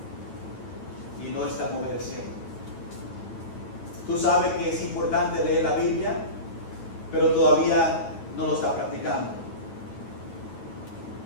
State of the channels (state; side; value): late; right; 9.5 ms